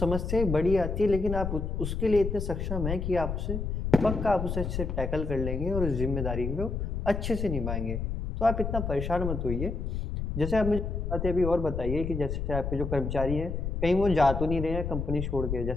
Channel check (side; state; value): left; noise; rumble, 3 dB below the sound